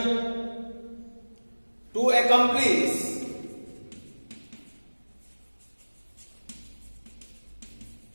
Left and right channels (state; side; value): inverted; both; correlation -1.00